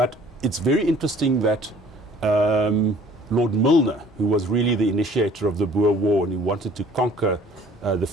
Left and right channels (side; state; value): both; normal; correlation 0.53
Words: it's very interesting that Lord Milner, who was really the initiator of the Boer War and who wanted to conquer the